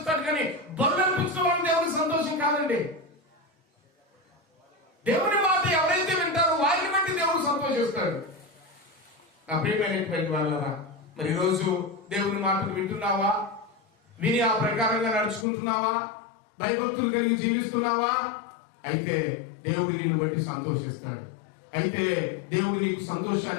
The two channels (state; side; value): drops out; right; at 15.5 s